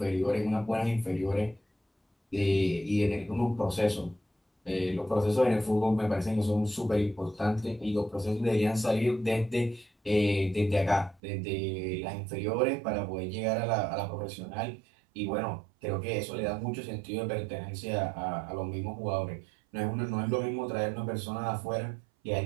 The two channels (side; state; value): left; drops out; at 11.2 s